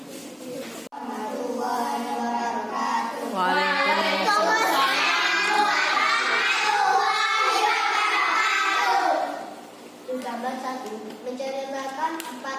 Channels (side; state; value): both; identical; correlation 1.00